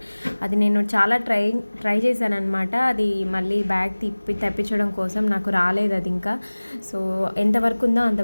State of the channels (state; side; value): inverted; both; correlation -1.00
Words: అది నేను చాలా ట్రై చేశాను అనమాట. అది మళ్ళీ బ్యాగ్ తెప్పించడం కోసం నాకు రాలేదు అది ఇంకా. సో ఎంతవరకు ఉందో